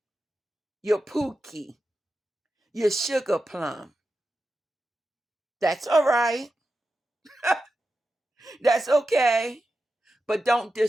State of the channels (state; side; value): normal; both; correlation 0.91